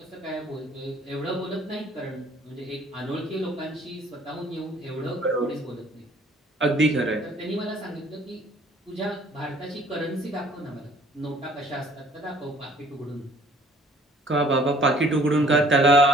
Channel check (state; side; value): normal; both; correlation 0.56